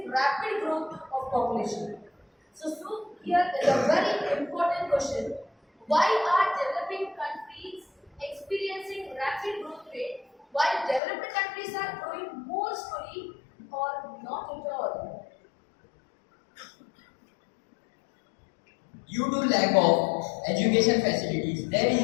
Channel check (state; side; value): drops out; right; at 11.0 s